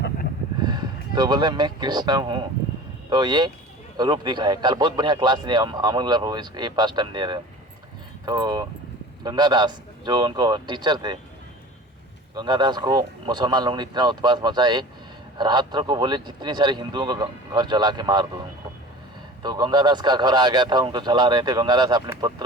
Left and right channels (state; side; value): normal; both; correlation 0.39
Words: तो बोले मैं कृष्ण हूँ। तो ये रूप दिखाए। कल बहुत बढ़िया क्लास दिए अमर प्रभु, ये फर्स्ट टाइम दे रहे हैं। तो गंगादास जो उनको टीचर थे, गंगादास को मुसलमान लोगों ने इतना उत्पात मचाए, रात्र को बोले जितनी सारे हिंदुओं को घर जला के मार दो उनको। तो गंगादास का घर आ गया था, उनको जला रहे थे। गंगादास अपने